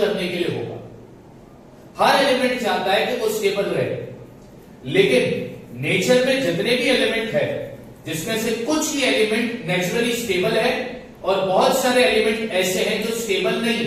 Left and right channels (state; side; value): identical; both; correlation 1.00